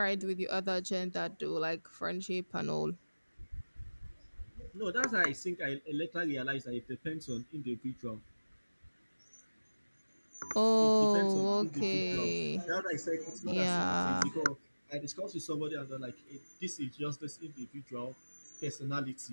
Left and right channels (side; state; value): both; inverted; correlation -1.00